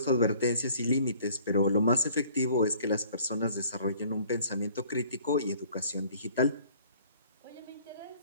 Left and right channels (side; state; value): both; inverted; correlation -0.55